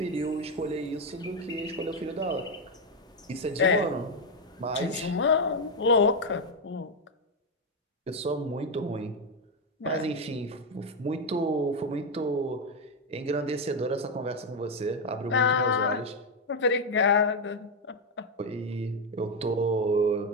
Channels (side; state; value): both; normal; correlation 0.05